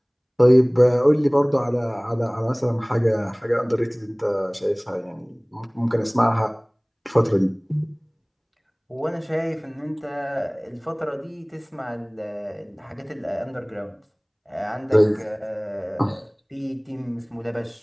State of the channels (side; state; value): both; identical; correlation 1.00